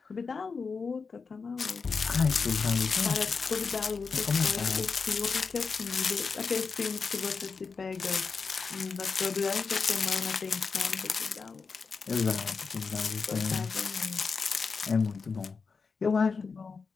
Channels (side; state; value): right; quieter; 5.0 dB